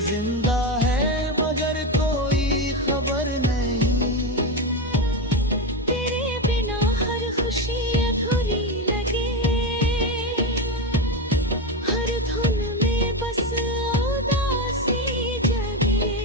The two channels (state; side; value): normal; both; correlation 0.14